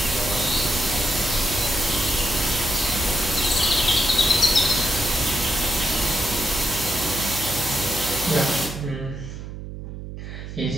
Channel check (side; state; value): right; noise; hum, 10 dB below the sound